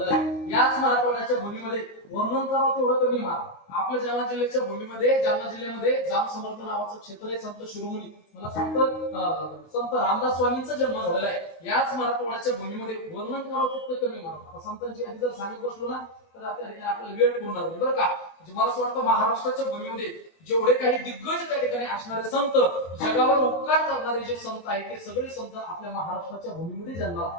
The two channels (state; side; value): late; right; 22 ms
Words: आहे. याच मराठवाड्याच्या भूमीमध्ये वर्णन करावं तेवढं कमी मार. आपल्या जालना जिल्ह्याच्या भूमीमध्ये जालना जिल्ह्यामध्ये जाम समर्थ नावाचं क्षेत्र आहे, संत शिरोमणी मला सांगतं संत रामदास स्वामींचा जन्म झालेला आहे. याच मराठवाड्याच्या भूमीमध्ये वर्णन करावं तितकं कमी मार. आता संतांची आधी जर सांगत बसलो ना तर आपल्याला वेळ पुरणार नाही बरं का. म्हणजे मला असं वाटतं महाराष्ट्राच्या भूमीमध्ये जेवढे काही दिग्गज त्या ठिकाणी असणारे संत जगावर उपकार करणारे जे संत आहेत ते सगळे संत आपल्या महाराष्ट्राच्या भूमीमध्ये जन्माला